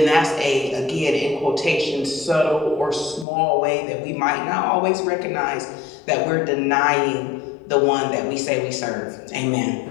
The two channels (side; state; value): right; drops out; at 3.2 s